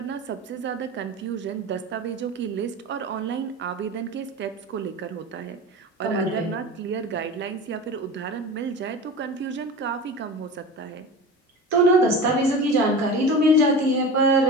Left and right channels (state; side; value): normal; both; correlation 0.31